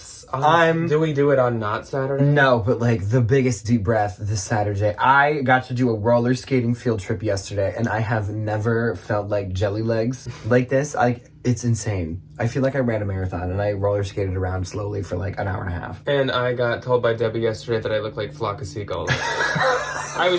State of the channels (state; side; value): identical; both; correlation 1.00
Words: Do we do it on not Saturday? No, but like the biggest deep breath this Saturday. I got to do a roller skating field trip yesterday, and I have never felt like jelly legs like this. It's insane. I feel like I ran a marathon, and I roller skated around slowly for like an hour and a half. And I got told by Debbie yesterday that I look like a flock of seagulls. I